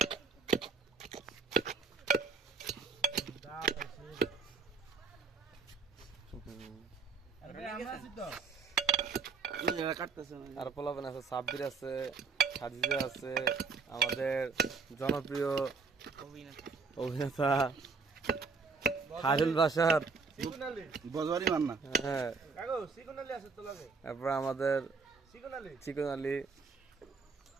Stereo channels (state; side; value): quieter; left; 4.7 dB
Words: আর পোলাবেন আছে, সাব্বির আছে, খাদিজা আছে, আমাদের জনপ্রিয় অভিনেতা খায়রুল বাশার, বজওয়ারি মান্না, হ্যাঁ, কাগো সিকোনালি আছে তো লাগে তারপর আমাদের সিকোনালি চিকন আলী,